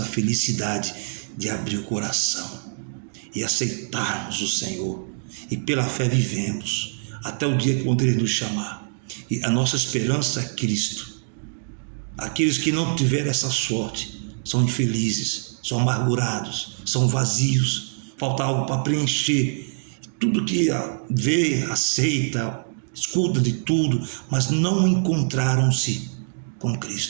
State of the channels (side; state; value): left; silent; digital silence